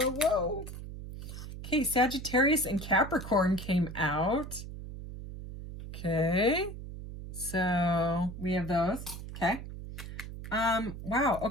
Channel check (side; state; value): right; noise; hum, 10 dB below the sound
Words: Okay, Sagittarius and Capricorn came out. Okay. So, we have those. Okay. Wow.